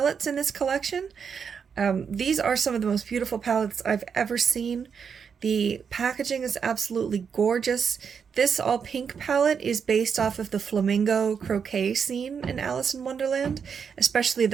in this collection. These are some of the most beautiful palettes I've ever seen. The packaging is absolutely gorgeous. This all pink palette is based off of the flamingo croquet scene in Alice in Wonderland, especially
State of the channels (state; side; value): quieter; left; 6.6 dB